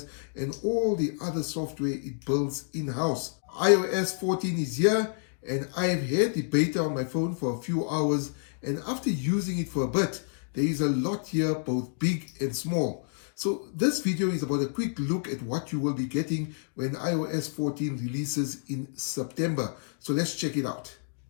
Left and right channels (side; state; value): right; silent; digital silence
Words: and all the other software it builds in-house. iOS 14 is here, and I've had the beta on my phone for a few hours, and after using it for a bit, there is a lot here, both big and small. So this video is about a quick look at what you will be getting when iOS 14 releases in September. So let's check it out.